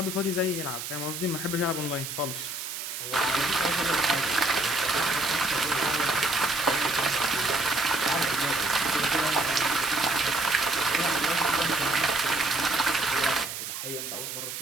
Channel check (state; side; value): noise; right; hiss, 7 dB below the sound